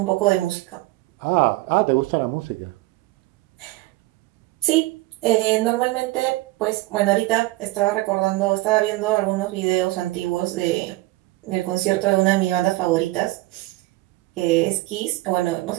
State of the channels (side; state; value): left; quieter; 19.4 dB